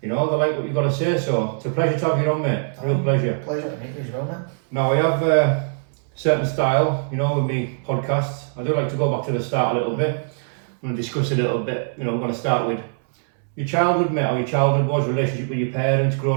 You know, they like what you've got to say. So it's a pleasure to have you on, mate. Real pleasure. Pleasure to meet you as well, mate. Now, I have a certain style, you know, with me podcasts. I do like to go back to the start a little bit. I'm going to discuss a little bit. You know, we're going to start with your childhood, mate, how your childhood was, relationship with your parents,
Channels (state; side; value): silent; left; 64 dB below the other